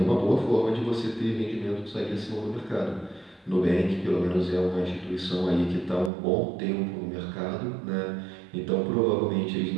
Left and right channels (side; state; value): left; drops out; at 6.1 s